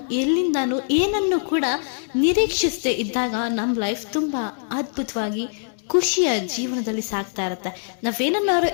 ಎಲ್ಲಿಂದಾನು ಏನನ್ನು ಕೂಡ ನಿರೀಕ್ಷಿಸದೆ ಇದ್ದಾಗ ನಮ್ಮ ಲೈಫ್ ತುಂಬಾ ಅದ್ಭುತವಾಗಿ ಖುಷಿಯ ಜೀವನದಲ್ಲಿ ಸಾಗ್ತಾ ಇರುತ್ತೆ. ನಾವೇನನ್ನಾರು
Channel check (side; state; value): right; silent; 63 dB below the other